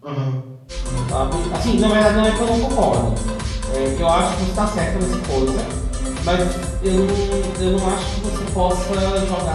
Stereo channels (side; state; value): both; identical; correlation 1.00